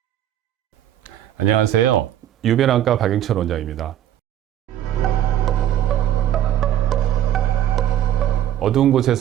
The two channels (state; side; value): quieter; left; 11.4 dB